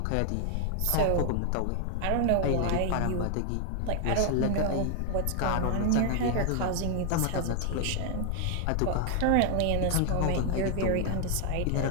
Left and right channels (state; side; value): different; both; correlation 0.00